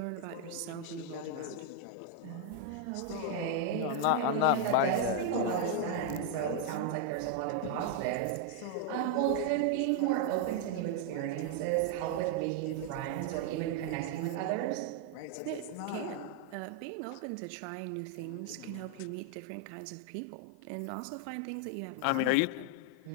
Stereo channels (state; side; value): different; both; correlation 0.00